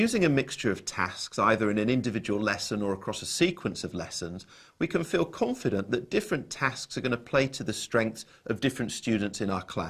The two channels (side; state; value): both; identical; correlation 1.00